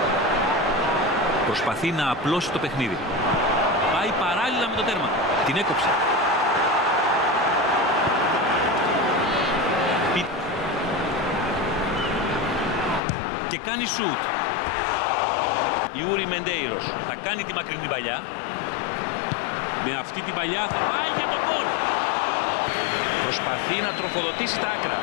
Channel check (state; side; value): drops out; right; at 13.0 s